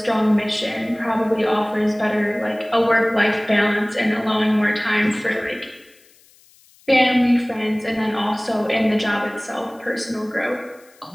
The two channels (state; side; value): noise; left; hiss, 29 dB below the sound